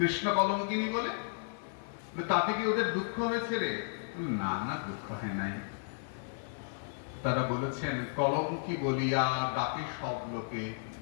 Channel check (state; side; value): silent; right; digital silence